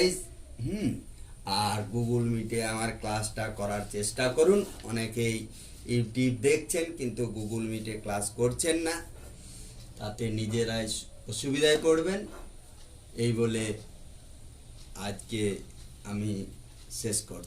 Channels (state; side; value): identical; both; correlation 1.00